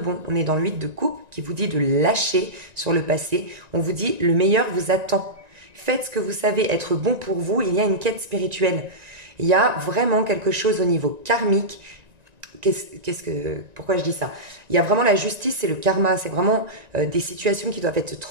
On est dans le 8 de coupe qui vous dit de lâcher sur le passé. On vous dit le meilleur vous attend. Faites ce que vous savez être bon pour vous. Il y a une quête spirituelle. Il y a vraiment quelque chose au niveau karmique. Pourquoi je dis ça? Il y a vraiment la justice et le karma. C'est vraiment des situations qui doivent être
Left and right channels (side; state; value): left; late; 1.9 ms